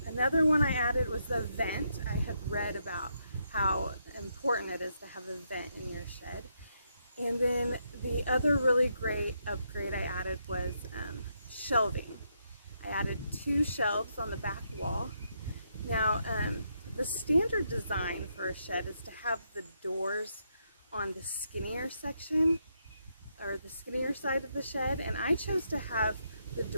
another one I added was the vent. I had read about how important it is to have a vent in your shed. And then the other really great upgrade I added was shelving. I added 2 shelves on the back wall. Now, the standard design for a shed is to have the doors on the skinnier section, or the skinnier side of the shed, and I chose to have the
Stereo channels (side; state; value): both; inverted; correlation -0.78